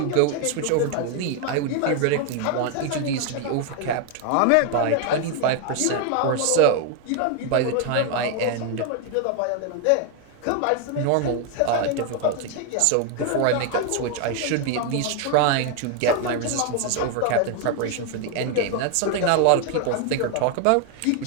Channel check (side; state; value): both; different; correlation 0.01